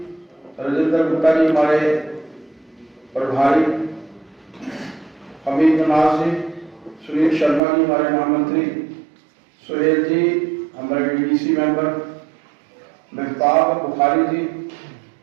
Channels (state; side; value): drops out; left; at 7.6 s